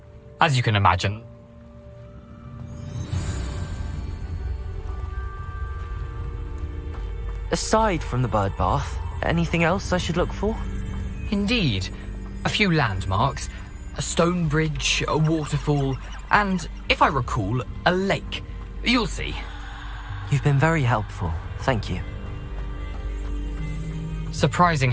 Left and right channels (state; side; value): identical; both; correlation 1.00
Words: As you can imagine. Aside from the bird bath, anything else I should look for? Indeed. A few landmarks, a stone bridge, a waterfall, and, if I recall, a lake. You'll see. You've been very helpful. Thank you. Surprising